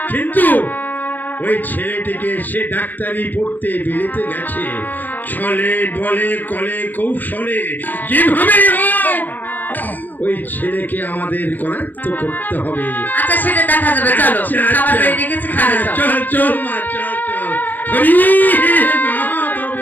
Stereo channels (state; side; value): late; right; 0.088 ms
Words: কিন্তু ওই ছেলেটিকে সে ডাক্তারি পড়তে বিলেতে গেছে, ছলে বলে কলে কৌশলে যেভাবে হোক ওই ছেলেকে আমাদের করায়ত্ত করতে হবে। আচ্ছা সেটা দেখা যাবে, চলো আচ্ছা, খাবার আচ্ছা। বেড়ে রেখেছি, খাবে চলো। চল চল মা, চল চল। হরি মা